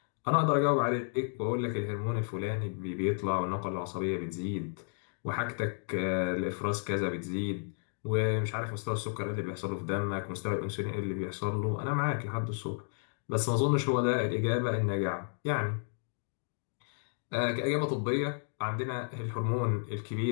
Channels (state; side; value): silent; right; digital silence